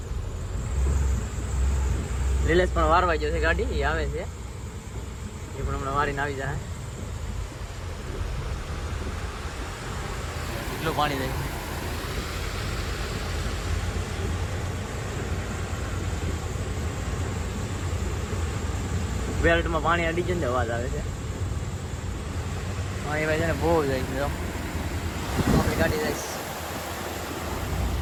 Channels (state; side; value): identical; both; correlation 1.00